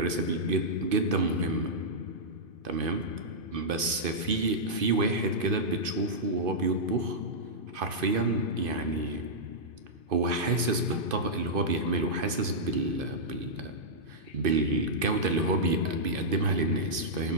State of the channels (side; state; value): left; late; 2.5 ms